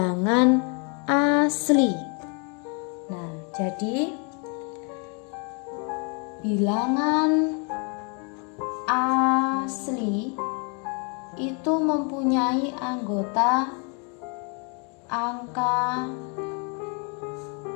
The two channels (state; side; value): quieter; right; 36.0 dB